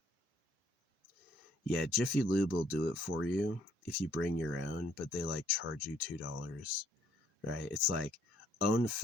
yeah, Jiffy Lube will do it for you if you bring your own, but they like charge you $2, right? It's like own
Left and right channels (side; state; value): both; normal; correlation 0.65